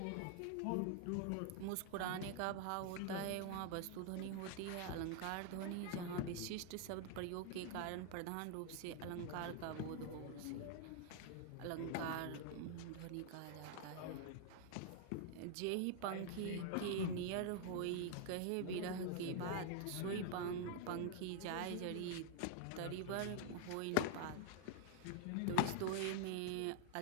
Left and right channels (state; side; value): different; both; correlation 0.00